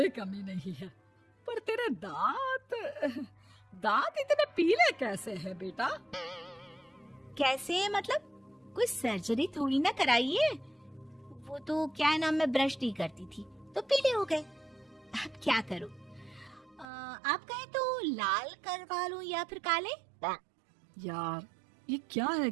कमी नहीं है, पर तेरे दांत इतने पीले कैसे हैं बेटा? कैसे मतलब? कोई सर्जरी थोड़ी ना कराइए। वो तो क्या नाम, मैं ब्रश नहीं करती थी तो पीले हो गए। अब क्या करूं? आप कहें तो लाल करवा लूं या फिर काले? यार ये क्या है,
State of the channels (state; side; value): drops out; left; at 16.9 s